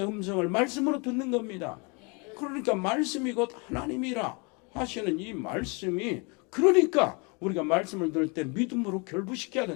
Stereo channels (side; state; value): right; quieter; 31.3 dB